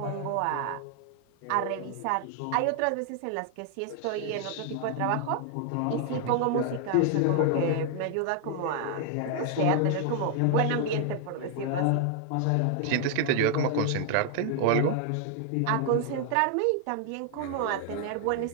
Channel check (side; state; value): both; different; correlation 0.00